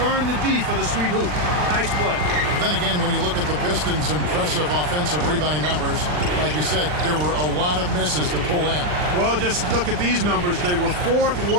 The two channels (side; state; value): left; late; 39 ms